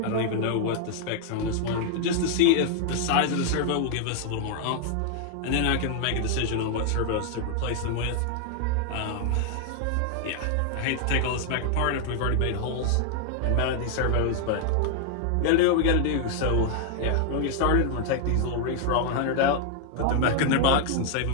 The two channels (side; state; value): both; different; correlation 0.00